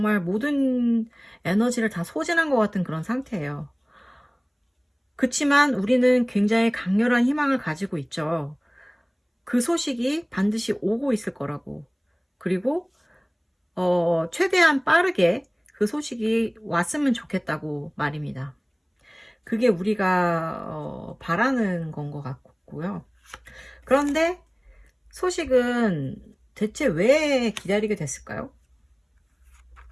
모든 에너지를 다 소진한 것 같은 그런 상태예요. 그치만 우리는 굉장히 강렬한 희망을 가지고 있죠. 그 소식이 반드시 오고 있을 거라고. 그리고 최대한 빠르게 그 소식이 왔으면 좋겠다고 말입니다. 그게 우리가 바라는 건 것 같고요. 그런데 소식은 대체 왜 기다리게 됐을까요?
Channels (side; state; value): both; identical; correlation 1.00